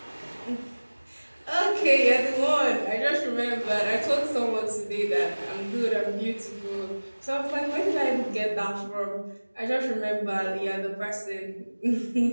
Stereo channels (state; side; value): inverted; both; correlation -1.00